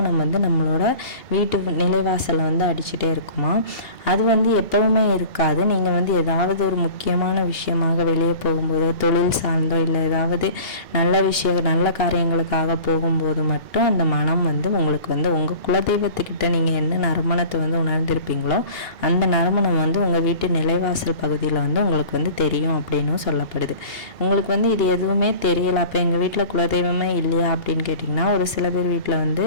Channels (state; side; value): late; right; 2.8 ms